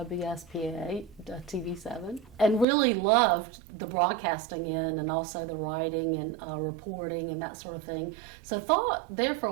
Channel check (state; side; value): drops out; left; at 2.7 s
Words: TV7, and really loved the broadcasting end and also the writing and reporting and that sort of thing. So thought there for